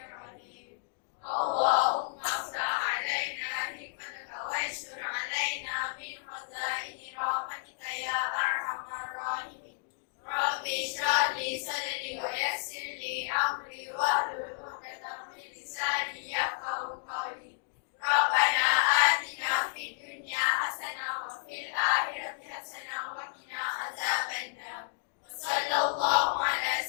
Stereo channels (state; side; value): silent; right; digital silence